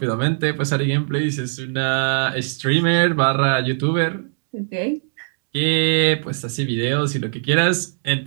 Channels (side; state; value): left; silent; digital silence